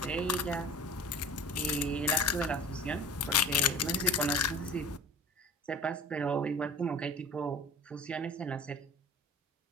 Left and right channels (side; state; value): both; normal; correlation 0.39